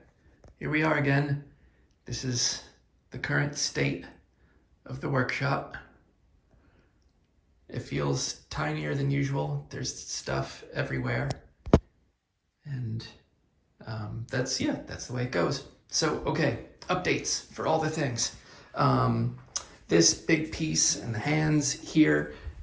here we are again. This is the current state of the workshop. It feels tinier than usual. There's stuff everywhere. And that's the way it goes. So, okay, updates for all the things. Um, this big piece and the hands here,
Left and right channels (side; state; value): both; identical; correlation 1.00